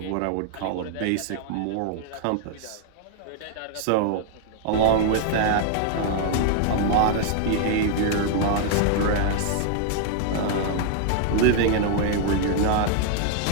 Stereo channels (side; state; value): both; different; correlation 0.00